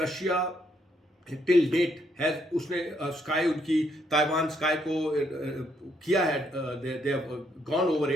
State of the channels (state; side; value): normal; both; correlation 0.73